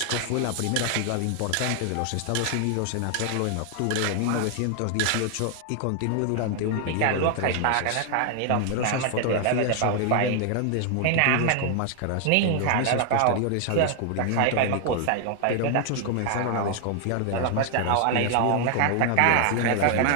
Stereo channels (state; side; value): different; both; correlation 0.00